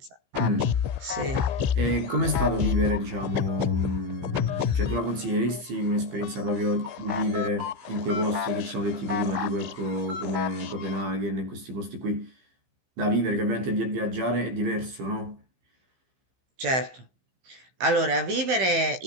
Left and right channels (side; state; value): left; late; 15 ms